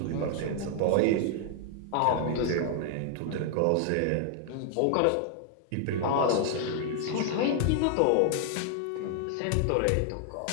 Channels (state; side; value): different; both; correlation 0.00